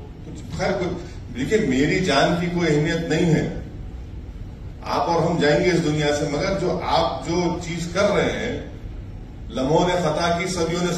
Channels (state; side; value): identical; both; correlation 1.00